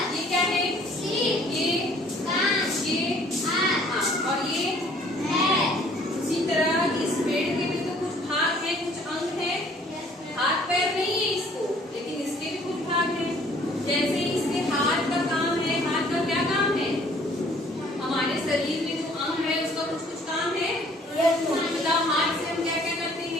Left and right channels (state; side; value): normal; both; correlation 0.57